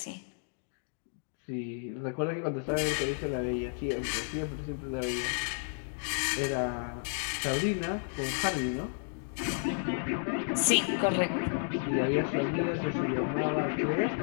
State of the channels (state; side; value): silent; right; digital silence